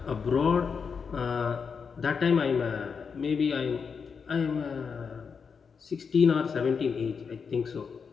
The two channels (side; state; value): right; quieter; 5.9 dB